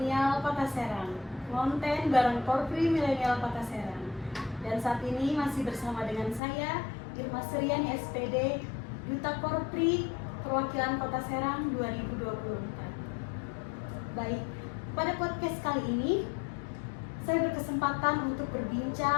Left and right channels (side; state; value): right; drops out; at 6.4 s